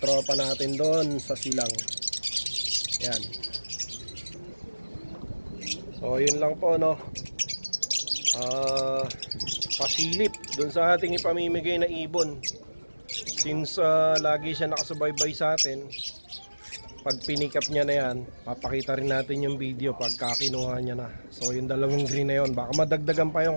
natin doon sa Silang. Yan. So yun lang po no. Pasilip doon sa ating ipamimigay na ibon. Since lagi siya nakasubaybay sa atin, pag pinikap niya na yan, papakita rin natin yung video pagka kinuha niya na. So yung dalawang green na yun, baka madagdagan pa yun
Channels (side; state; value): both; inverted; correlation -1.00